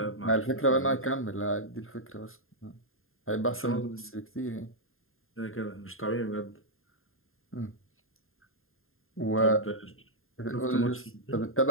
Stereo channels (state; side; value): late; right; 0.61 ms